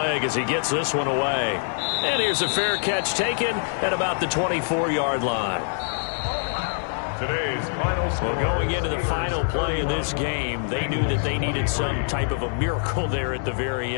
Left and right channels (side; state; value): right; silent; digital silence